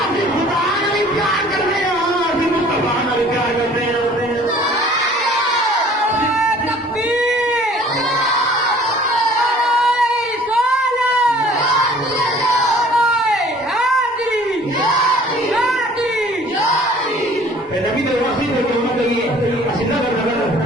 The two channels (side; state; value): both; normal; correlation 0.52